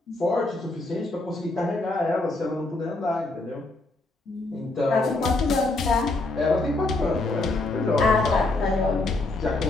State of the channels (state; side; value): quieter; right; 3.0 dB